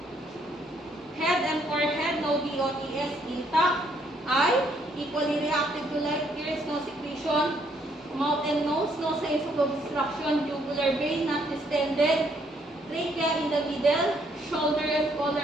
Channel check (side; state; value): both; normal; correlation 0.69